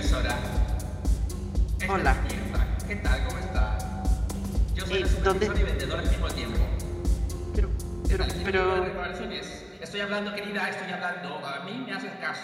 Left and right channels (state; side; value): identical; both; correlation 1.00